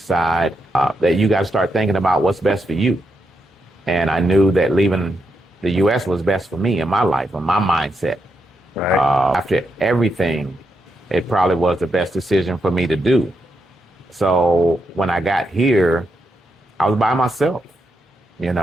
that you got to start thinking about what's best for you. And I knew that leaving the U.S. was best for me in my life, in my mindset. Right. After everything, it probably was the best decision for me to do. So when I got here, I was by myself,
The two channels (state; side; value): normal; both; correlation 0.83